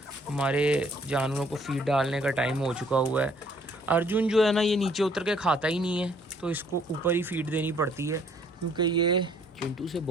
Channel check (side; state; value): both; normal; correlation 0.62